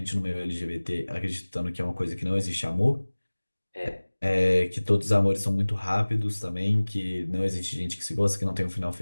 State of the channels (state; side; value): inverted; both; correlation -1.00